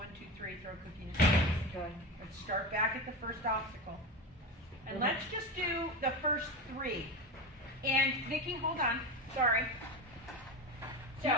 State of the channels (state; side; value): normal; both; correlation 0.22